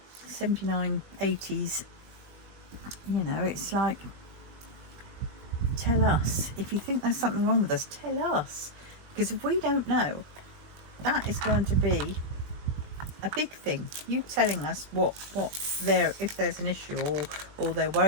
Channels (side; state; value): left; late; 20 ms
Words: 79, 80s, you know, it's like, tell us. If you think there's something wrong with us, tell us. Because if we don't know, that is going to be a big thing. You telling us what if there's an issue, or they're